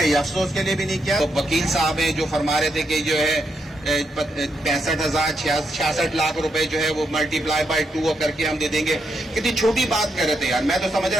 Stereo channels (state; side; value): normal; both; correlation 0.81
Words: افسوس کے لیے بھی نہیں کیا. وکیل صاحب ہیں جو فرما رہے تھے کہ جو ہے 65,000 66 لاکھ روپے جو ہے وہ ملٹی پلائی بائی 2 کر کے ہم دے دیں گے. کتنی چھوٹی بات کر رہے تھے یار. میں تو سمجھ